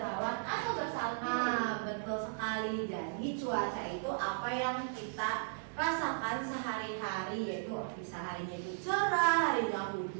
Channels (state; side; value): silent; left; digital silence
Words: atau bersalju. Nah, betul sekali. Jadi cuaca itu apa yang kita rasakan sehari-hari, yaitu bisa harinya itu cerah, harinya